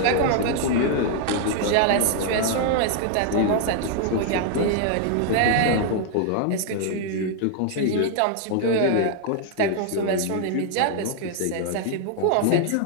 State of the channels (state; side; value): different; both; correlation 0.00